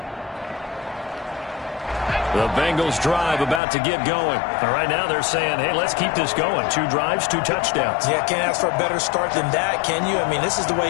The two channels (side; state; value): right; drops out; at 3.6 s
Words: The Bengals drive about to get going. And right now they're saying, hey, let's keep this going. 2 drives, 2 touchdowns. Yeah, can't ask for a better start than that, can you? I mean, this is the way